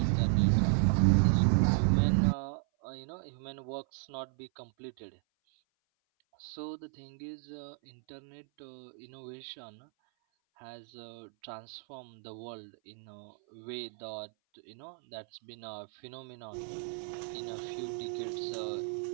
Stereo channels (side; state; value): left; silent; 55 dB below the other